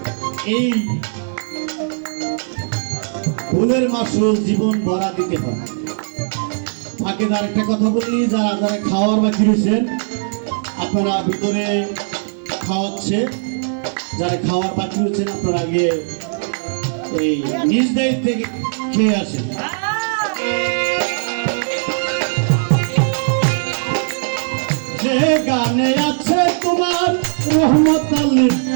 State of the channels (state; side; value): silent; left; digital silence